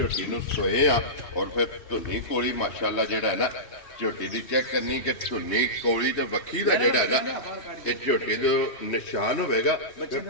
ਨੂੰ सोए आ और फिर धुनी कोली माशाअल्लाह ਜਿਹੜਾ है ना ਝੋਟੀ ਦੀ ਚੈੱਕ ਕਰਨੀ ਕਿ ਝੁੰਨੀ ਕੋਲੀ ਤੇ ਵੱਖੀ ਦਾ ਜਿਹੜਾ ਹੈ ਨਾ ਇਹ ਝੋਟੀ ਦਾ ਨਿਸ਼ਾਨ ਹੋਵੇਗਾ ਤੇ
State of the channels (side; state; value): right; late; 3.1 ms